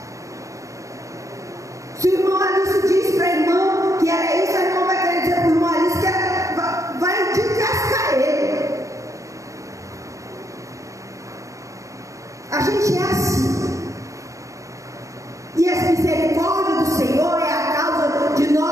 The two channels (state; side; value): late; left; 0.15 ms